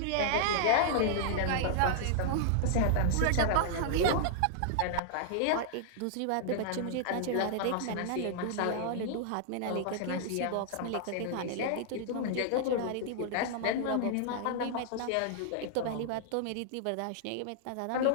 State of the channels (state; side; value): different; both; correlation -0.01